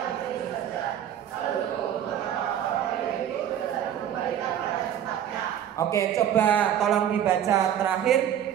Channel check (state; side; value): quieter; left; 10.2 dB